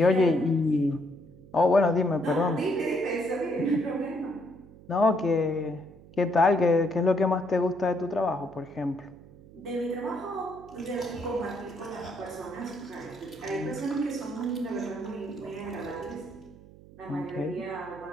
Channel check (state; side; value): noise; right; hum, 21 dB below the sound